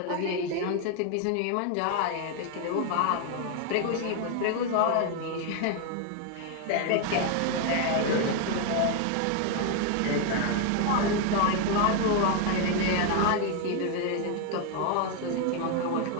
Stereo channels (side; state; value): both; different; correlation 0.00